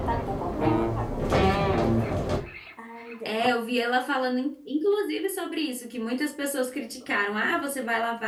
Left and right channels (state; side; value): identical; both; correlation 1.00